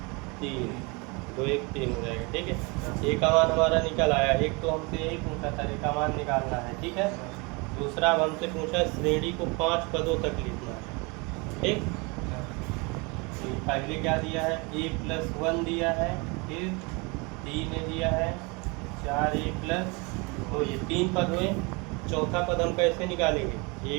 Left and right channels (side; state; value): left; quieter; 28.9 dB